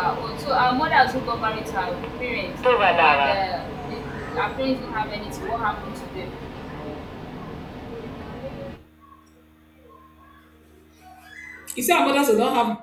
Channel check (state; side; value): identical; both; correlation 1.00